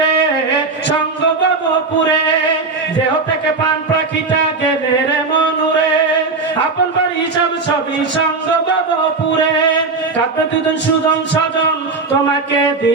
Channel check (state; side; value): quieter; left; 4.0 dB